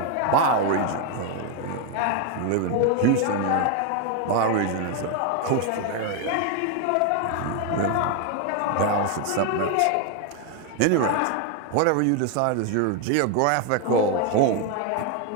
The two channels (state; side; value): different; both; correlation 0.01